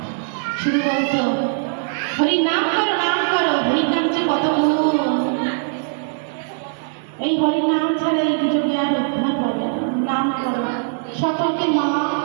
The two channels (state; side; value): silent; left; 65 dB below the other